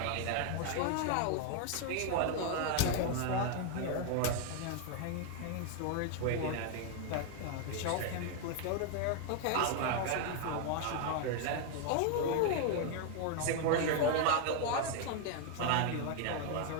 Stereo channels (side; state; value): both; different; correlation 0.00